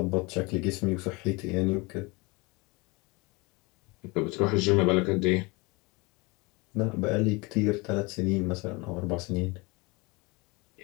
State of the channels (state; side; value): quieter; right; 26.3 dB